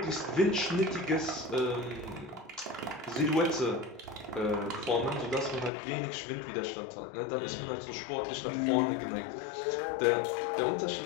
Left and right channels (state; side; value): drops out; right; at 5.7 s